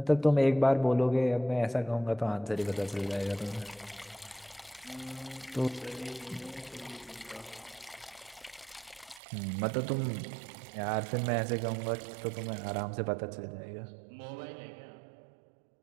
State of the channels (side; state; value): left; drops out; at 9.2 s